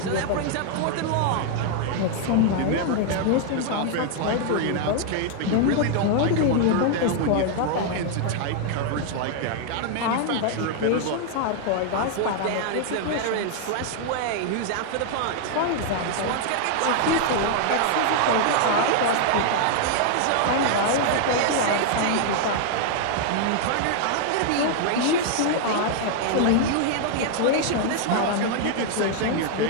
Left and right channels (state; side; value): different; both; correlation 0.00